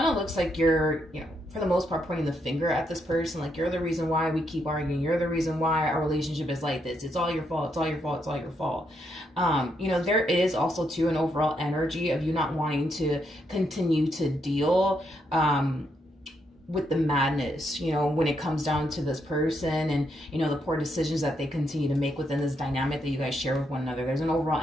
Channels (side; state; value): both; normal; correlation 0.78